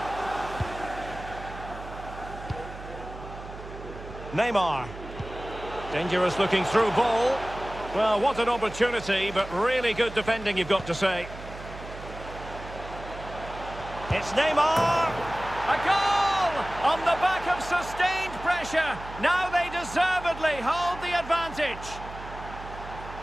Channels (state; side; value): noise; right; hum, 13 dB below the sound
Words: Neymar. Dangerous looking through ball. Well, what an opportunity, but really good defending, you've got to say. It's Neymar! A goal! On the back of sustained pressure. Now they deservedly hold the advantage.